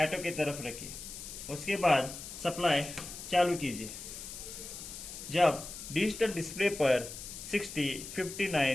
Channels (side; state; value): left; noise; hiss, 10 dB below the sound